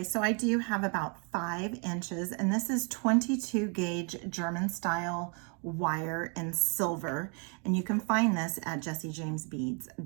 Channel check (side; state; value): left; quieter; 36.2 dB